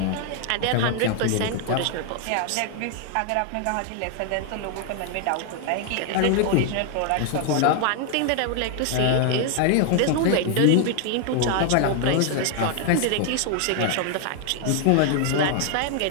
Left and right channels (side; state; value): both; different; correlation 0.00